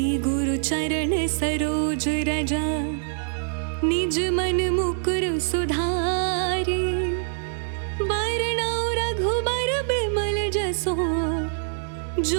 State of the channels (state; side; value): silent; left; digital silence